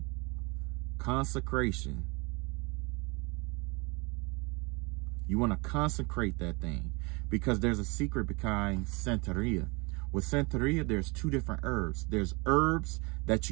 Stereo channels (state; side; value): quieter; left; 28.4 dB